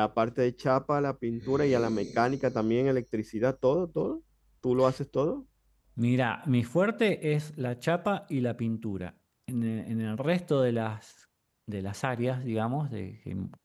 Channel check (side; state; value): both; identical; correlation 1.00